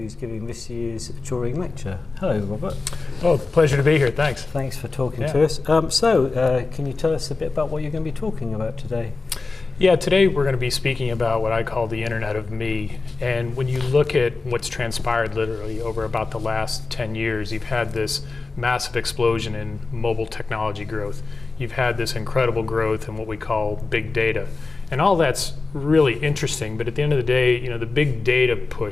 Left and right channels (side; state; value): right; quieter; 3.8 dB